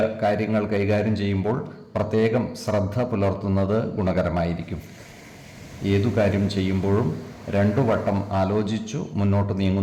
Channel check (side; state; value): both; identical; correlation 1.00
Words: കാര്യങ്ങൾ കൈകാര്യം ചെയ്യുമ്പോൾ പ്രത്യേകം ശ്രദ്ധ പുലർത്തുന്നത് ഗുണകരമായിരിക്കും. ഏതു കാര്യം ചെയ്യുമ്പോഴും 2 വട്ടം ആലോചിച്ചു മുന്നോട്ട്